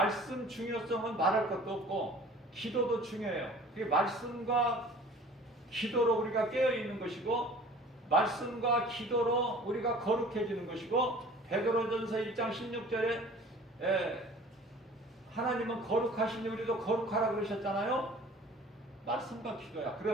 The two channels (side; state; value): both; normal; correlation 0.46